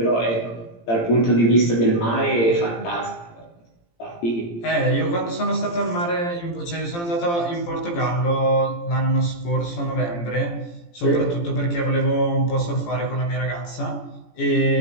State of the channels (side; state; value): right; late; 17 ms